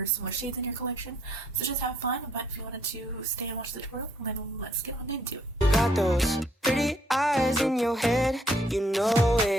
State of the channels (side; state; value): both; normal; correlation 0.68